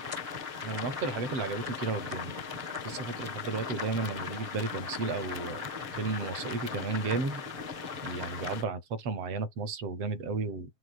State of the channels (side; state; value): left; late; 7.4 ms